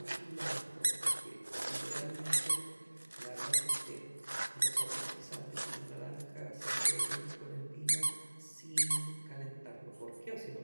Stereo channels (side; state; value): both; inverted; correlation -1.00